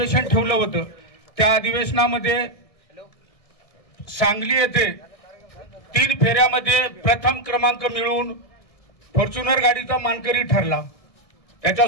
ठेवलं होतं. त्या अधिवेशनामध्ये सांगली येथे 3 फेऱ्यामध्ये प्रथम क्रमांक मिळवून फॉर्च्युनर गाडीचा मानकरी ठरला.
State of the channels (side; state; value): right; late; 1.6 ms